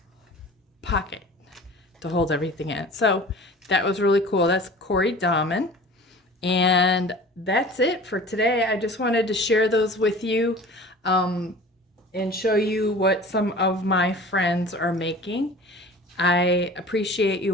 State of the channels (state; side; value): normal; both; correlation 0.41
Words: pocket to hold everything in. So that was really cool. That's Cori Dahmen. And that's it for today. I just wanted to share those with you and show you what some of my friends are making. I appreciate